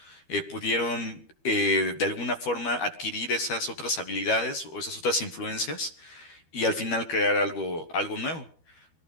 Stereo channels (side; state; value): right; late; 12 ms